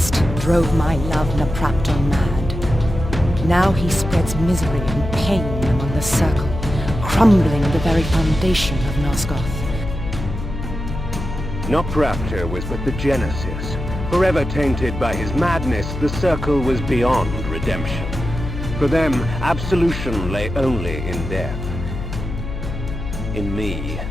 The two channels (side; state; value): left; noise; hum, 7 dB below the sound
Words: drove my love Napraptor mad. Now he spreads misery and pain among the Circle, crumbling the very foundation of Nosgoth. Napraptor was but the genesis. Forever tainted by his madness, the Circle was beyond redemption. For them, absolution lay only in death. In me,